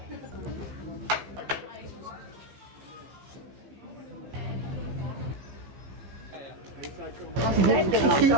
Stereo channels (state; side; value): late; left; 15 ms